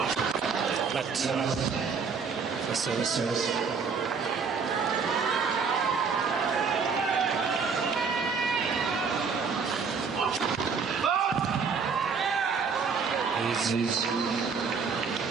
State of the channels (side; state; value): left; quieter; 5.5 dB